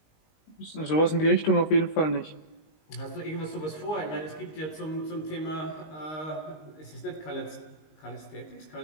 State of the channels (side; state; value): right; late; 19 ms